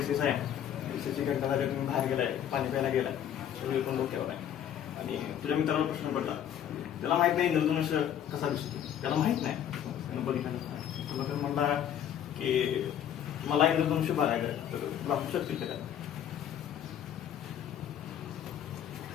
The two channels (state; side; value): quieter; right; 10.0 dB